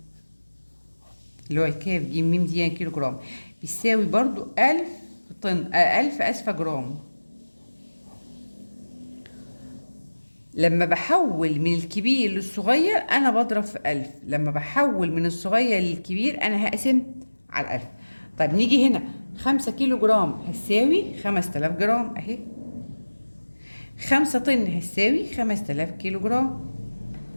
اللي هو الكاف جيم ميم دي يعني كيلو جرام بيساوي برضو 1000 طن 1000 أسفة جرام. لما بحول من الكبير للصغير أنا بضرب في 1000. لما بحول من الصغير للكبير أنا هقسم على 1000. طيب نيجي هنا 5 كيلو جرام هتساوي 5000 جرام أهي. 5 طن هتساوي 5000 كيلو جرام.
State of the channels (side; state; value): both; inverted; correlation -1.00